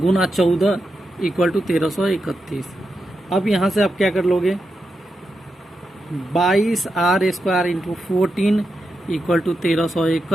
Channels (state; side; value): normal; both; correlation 0.87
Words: 14 इक्वल टू 1331। अब यहाँ से आप क्या कर लोगे, 22 r square into 14 equal to